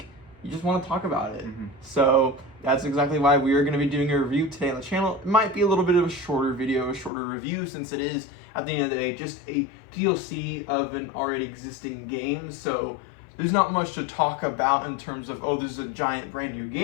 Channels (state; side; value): drops out; right; at 7.1 s